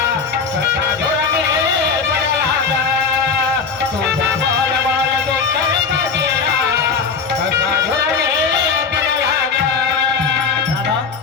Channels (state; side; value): quieter; right; 5.4 dB